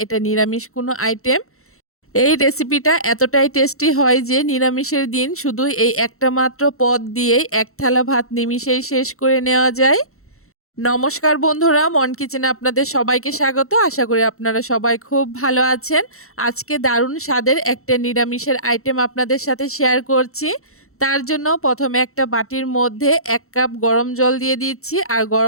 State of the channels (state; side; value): late; right; 0.63 ms